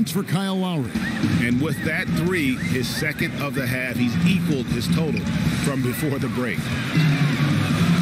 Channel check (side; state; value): both; identical; correlation 1.00